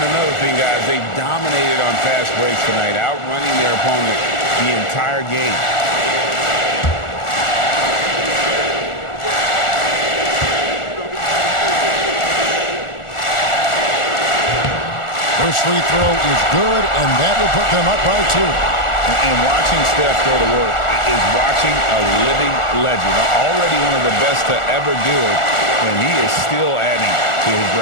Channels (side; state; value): right; late; 1.4 ms